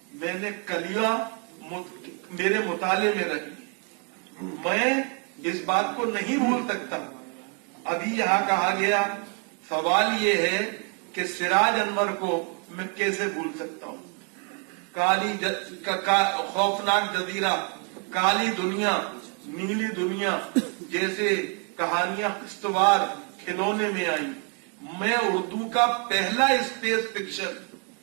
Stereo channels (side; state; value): left; quieter; 36.5 dB